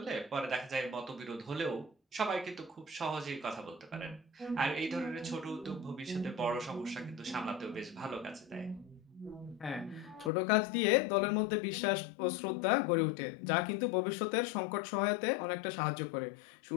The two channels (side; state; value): right; drops out; at 10.3 s